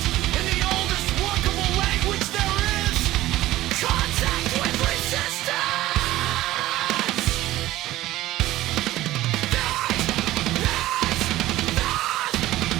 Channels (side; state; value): left; quieter; 16.0 dB